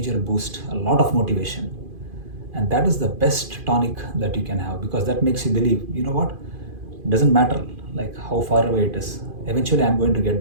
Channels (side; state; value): left; late; 2.5 ms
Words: boost, a lot of motivation. And that is the best tonic that you can have, because that makes you believe, what, it doesn't matter like how far away it is. Eventually I'm going to get